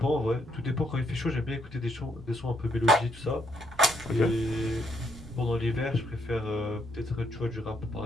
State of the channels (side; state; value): both; normal; correlation 0.74